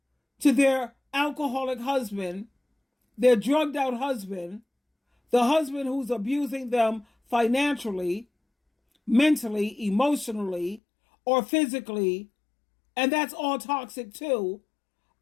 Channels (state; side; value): drops out; right; at 10.8 s